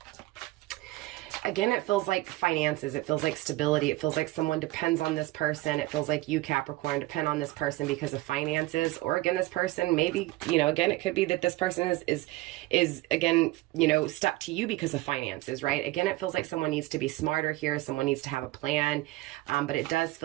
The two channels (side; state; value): left; quieter; 18.9 dB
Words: Again, it feels like finances. It feels like stability. It feels like someone depends on this person. It feels like you, Capricorn, depend on this person because of finances. Or again, this person maybe, you know, again, it could be that this person is again, you know, stuck to you because of finances, right? Again, it feels like someone needs to be smarter here. Someone needs to have a plan. But it does